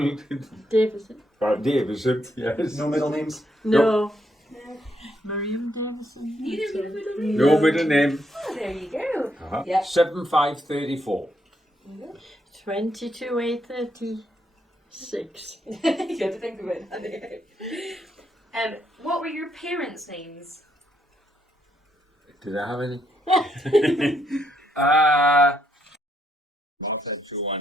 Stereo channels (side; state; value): both; normal; correlation 0.76